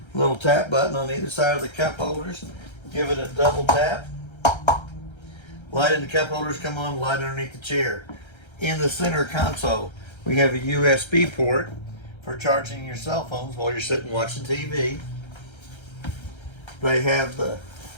Little tap button on either side of the cup holders. Give it a double tap. Light in the cup holders come on, light underneath the chair. In the center console, we have a USB port for charging your cell phones while you're sitting watching TV. They have the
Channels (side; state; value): right; late; 1.3 ms